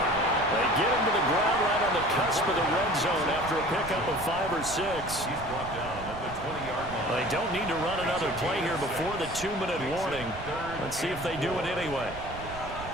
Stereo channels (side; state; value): right; noise; rumble, 13 dB below the sound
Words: get him to the ground right on the cusp of the red zone after a pickup of 5 or 6. He's brought down at the 20-yard line. They don't need to run another play here before the 2-minute warning. Let's see if they do it anyway.